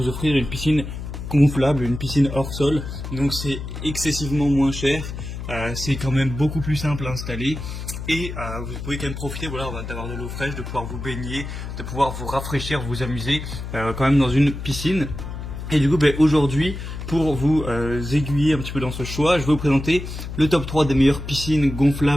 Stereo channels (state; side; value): noise; left; hum, 8 dB below the sound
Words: offrir une piscine gonflable, une piscine hors sol. Donc c'est excessivement moins cher, c'est quand même beaucoup plus simple à installer. Et vous pouvez quand même profiter d'avoir de l'eau fraîche, de pouvoir vous baigner, de pouvoir vous rafraîchir, vous amuser quand même dans une piscine. Et du coup aujourd'hui, pour vous aiguiller un petit peu dans ce choix, je vais vous présenter le top 3 des meilleures piscines